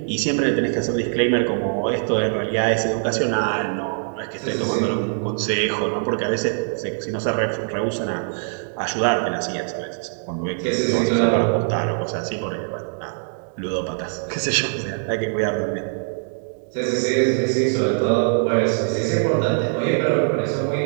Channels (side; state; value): left; silent; digital silence